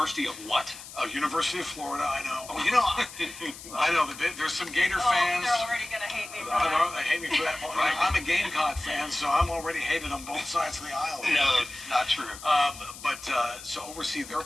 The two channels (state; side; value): noise; left; hiss, 14 dB below the sound